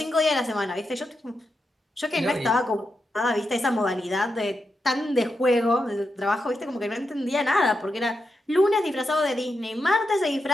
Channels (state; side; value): normal; both; correlation 0.86